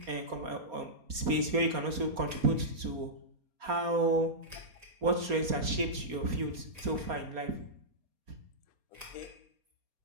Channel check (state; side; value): late; left; 4.3 ms